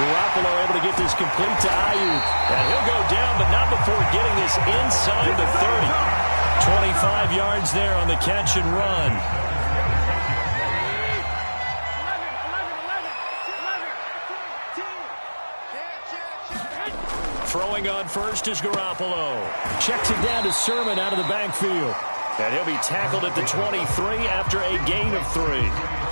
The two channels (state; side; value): inverted; both; correlation -1.00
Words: able to get this complete to Ayuk. And he'll go down, but not before getting this inside the 30. 25 yards there on the catch and run. Throwing on first is Garoppolo. Checks it down to Sermon out of the backfield. And he'll be tackled at the 23 after a gain of 3.